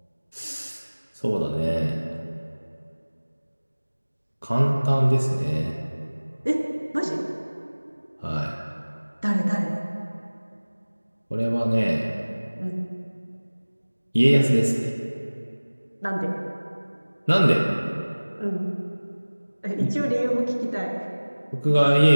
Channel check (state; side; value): inverted; both; correlation -1.00